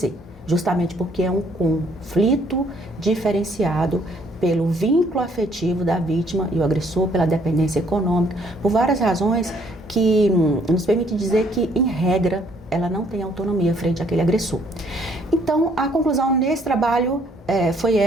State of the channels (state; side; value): normal; both; correlation 0.65